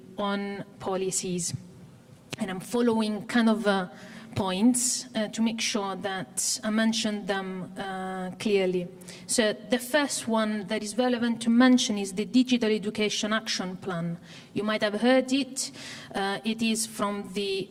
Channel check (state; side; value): identical; both; correlation 1.00